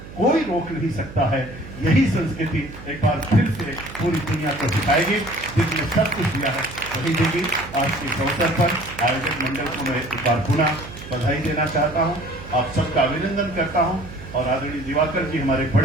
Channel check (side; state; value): right; noise; hum, 15 dB below the sound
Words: कोई रोक नहीं सकता है। यही संस्कृति एक बार फिर से पूरी दुनिया को सिखाएगी, जिसने सब कुछ दिया है वही देगी। आज के अवसर पर आयोजक मंडल को मैं एक बार पुनः बधाई देना चाहता हूँ, आप सबका अभिनंदन करता हूँ और आदरणीय दिवाकर जी हमारे